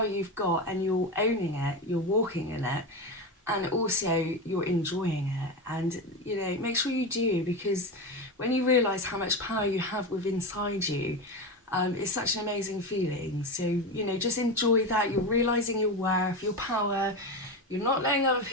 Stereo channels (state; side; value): normal; both; correlation 0.19